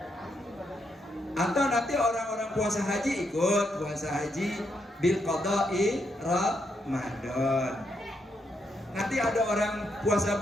Atau nanti orang-orang puasa haji ikut puasa haji bil qada'i Ramadan. Nanti ada orang puasa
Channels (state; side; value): normal; both; correlation 0.79